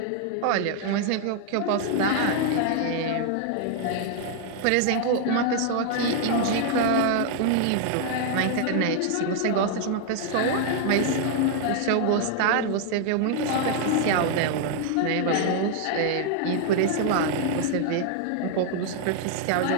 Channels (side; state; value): both; different; correlation 0.00